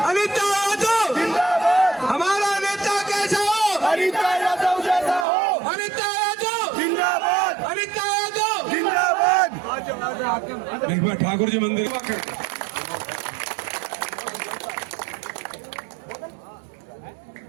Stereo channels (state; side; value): drops out; left; at 5.2 s